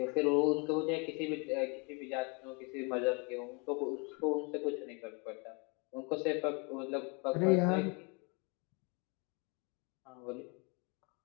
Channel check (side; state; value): right; quieter; 32.6 dB